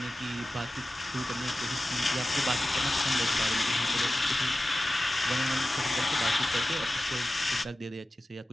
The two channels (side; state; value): both; normal; correlation 0.95